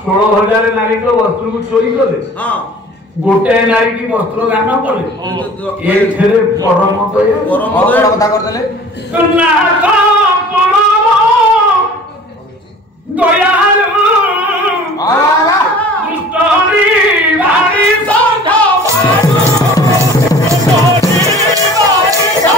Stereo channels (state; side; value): normal; both; correlation 0.45